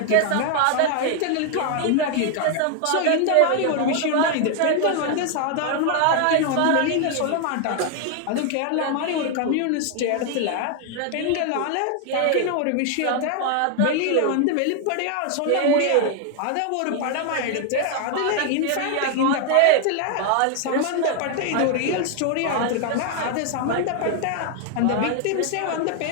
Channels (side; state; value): both; different; correlation 0.00